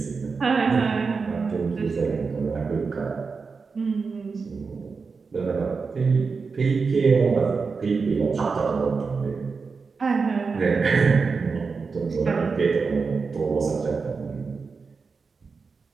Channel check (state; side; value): quieter; left; 4.8 dB